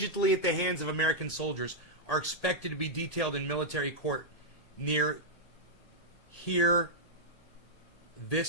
at the hands of American soldiers, are expected to be detailed in military court near here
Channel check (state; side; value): late; right; 1.7 ms